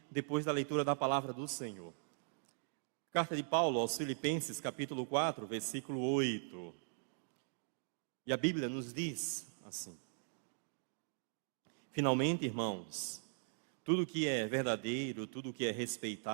depois da leitura da palavra do Senhor. Carta de Paulo aos Filipenses, capítulo 4, versículo 8. E a Bíblia nos diz assim: finalmente, irmãos, tudo que é verdadeiro, tudo que é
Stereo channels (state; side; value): silent; left; digital silence